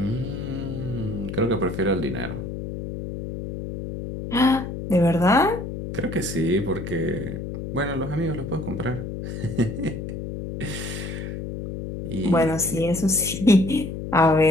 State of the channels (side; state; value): left; noise; hum, 7 dB below the sound